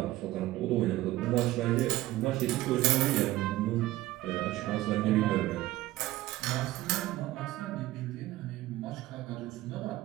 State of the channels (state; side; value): quieter; left; 16.5 dB